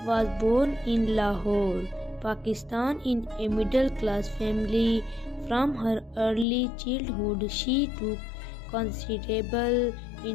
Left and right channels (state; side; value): drops out; right; at 6.5 s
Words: was born in Lahore, Pakistan in a middle-class family. From her early childhood, she took considerable